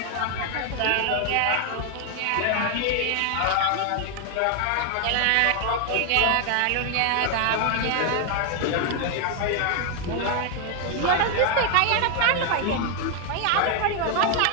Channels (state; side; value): different; both; correlation 0.00